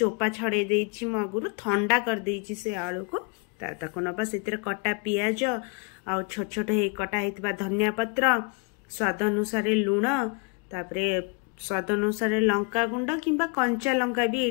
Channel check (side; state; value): right; quieter; 34.3 dB